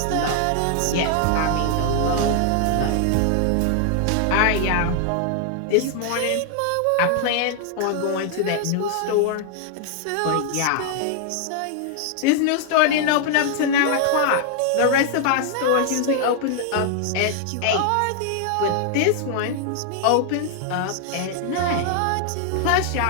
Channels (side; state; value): both; different; correlation 0.00